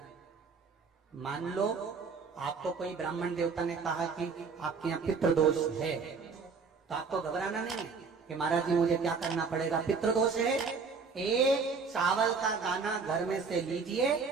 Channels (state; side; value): quieter; left; 5.0 dB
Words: मान लो आपको कोई ब्राह्मण देवता ने कहा कि आपके यहाँ पितृ दोष है, तो आपको घबराना नहीं है कि महाराज जी मुझे क्या करना पड़ेगा। पितृ दोष है, एक चावल का दाना घर में से लीजिए,